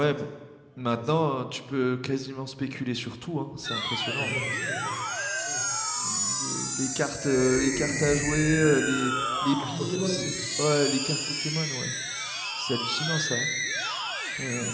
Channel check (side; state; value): both; identical; correlation 1.00